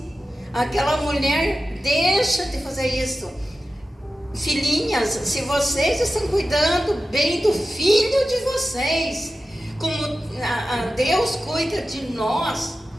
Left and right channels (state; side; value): normal; both; correlation 0.93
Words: Aquela mulher deixa de fazer isso. Filhinhas, se vocês estão cuidando bem do filho de vocês, como Deus cuida de nós,